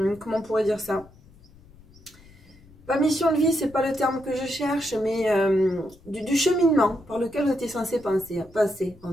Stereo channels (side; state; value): left; noise; rumble, 24 dB below the sound